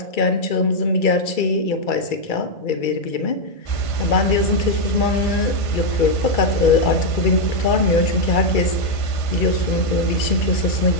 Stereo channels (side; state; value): right; late; 2.3 ms